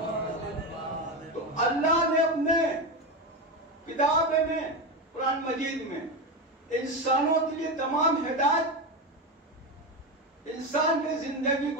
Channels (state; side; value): normal; both; correlation 0.15